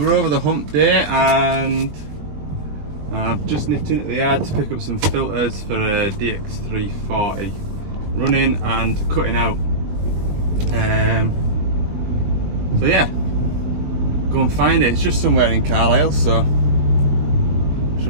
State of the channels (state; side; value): late; left; 20 ms